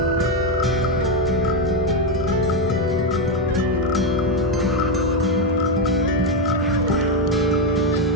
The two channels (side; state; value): both; normal; correlation 0.06